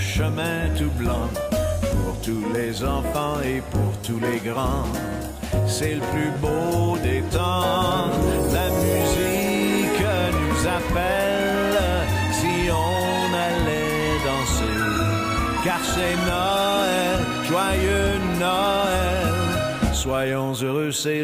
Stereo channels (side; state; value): both; identical; correlation 1.00